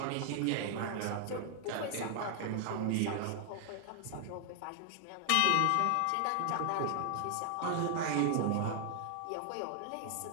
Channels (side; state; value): both; different; correlation 0.00